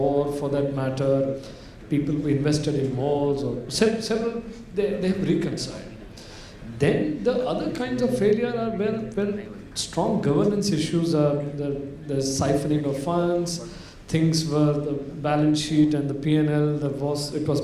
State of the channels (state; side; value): identical; both; correlation 1.00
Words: for that matter, people who invested in malls or several, they have reconciled. Then the other kinds of failure are where strong governance issues are, the siphoning of funds, things where the balance sheet and the P&L that it was